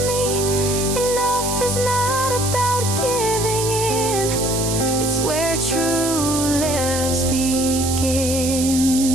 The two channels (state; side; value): noise; right; hiss, 4 dB below the sound